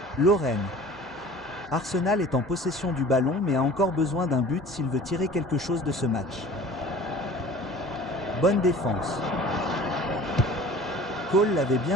Lorraine. Arsenal est en possession du ballon mais a encore besoin d'un but s'il veut tirer quelque chose de ce match. Bonne défense. Cole l'avait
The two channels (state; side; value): normal; both; correlation 0.44